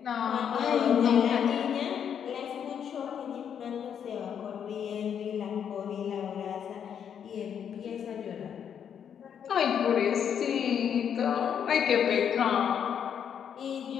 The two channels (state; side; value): quieter; right; 8.3 dB